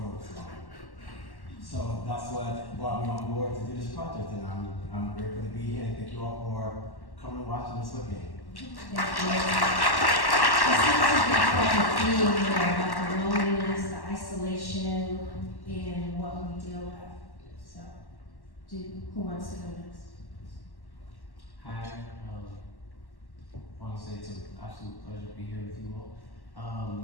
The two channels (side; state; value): right; late; 1.1 ms